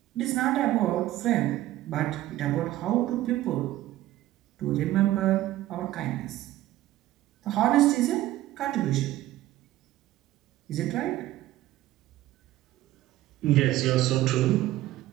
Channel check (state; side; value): quieter; left; 15.1 dB